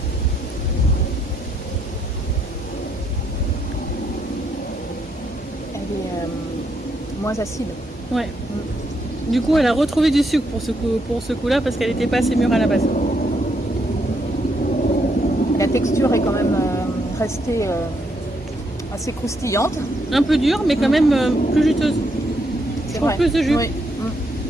Elle est moins acide. Ouais. Du coup, elle a retrouvé du sucre pour ce coup-là parce qu'elle n'était pas assez mûre à la base. La texture est quand même restée assez croustillante. Un peu dure, mais quand même plus juteuse. C'est Pour vrai. plus de jus. Oui.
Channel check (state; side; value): normal; both; correlation 0.76